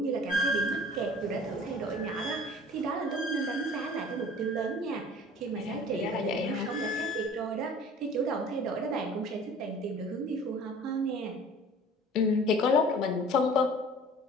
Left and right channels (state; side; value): normal; both; correlation 0.46